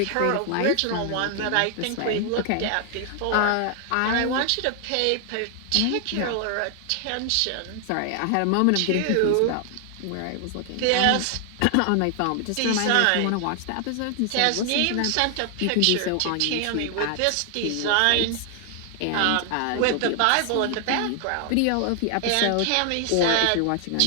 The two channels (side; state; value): both; different; correlation 0.00